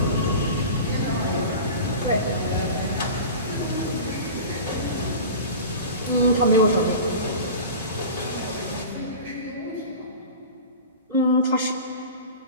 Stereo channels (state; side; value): inverted; both; correlation -0.34